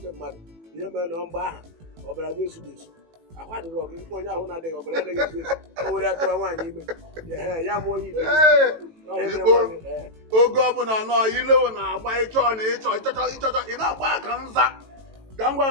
mmadụ ihe mere na mgbe aha ọbara gị esu esu ahụ adịghị ọgụ onye ahụ na-adịghị ọbara anaghị esu esu o were atụrụ nwaanyị ime ya mụọ onye ibe oge ọbụla nọ ilewo na-agba ịchọ na ịchọchọ ị na-agba aka nza ka ngwa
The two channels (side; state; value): left; late; 18 ms